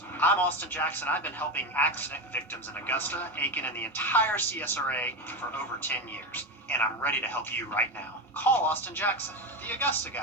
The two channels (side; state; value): both; normal; correlation 0.18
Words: I'm Austin Jackson. I've been helping accident victims in Augusta, Aiken, and the entire CSRA for over 10 years. And I'm ready to help you right now. Call Austin Jackson, the Augusta